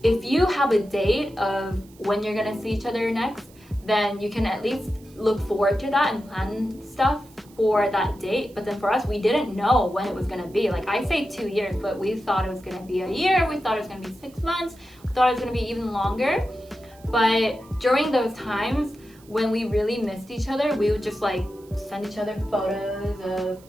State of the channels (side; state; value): right; noise; hiss, 27 dB below the sound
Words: if you have a date of when you're gonna see each other next, then you can at least look forward to that and plan stuff for that date. But then for us, we didn't know when it was gonna be. Like I say 2 years, but we thought it was gonna be a year, we thought it was gonna be 6 months, we thought it was gonna be even longer. But during those times when we really missed each other, we would just like send each other photos of